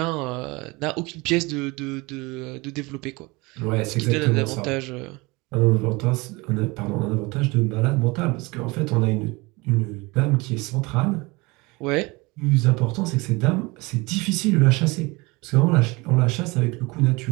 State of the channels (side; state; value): left; quieter; 24.5 dB